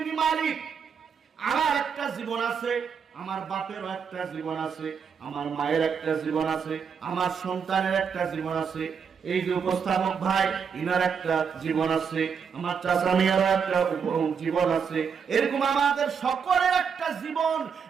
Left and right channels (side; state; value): left; quieter; 6.6 dB